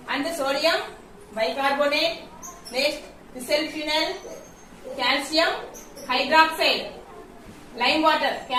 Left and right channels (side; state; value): both; identical; correlation 1.00